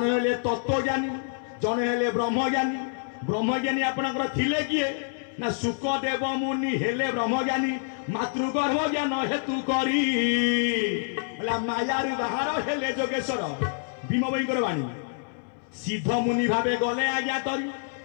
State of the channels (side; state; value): right; silent; 60 dB below the other